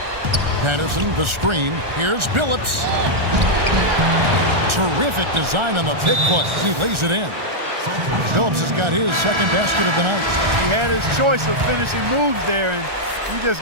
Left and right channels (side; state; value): left; late; 1.4 ms